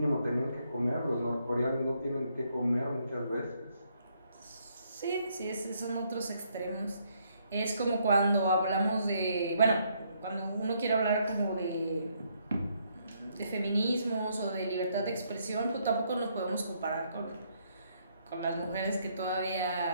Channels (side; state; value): both; inverted; correlation -0.72